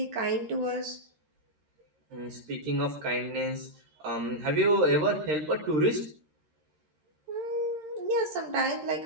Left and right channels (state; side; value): late; left; 13 ms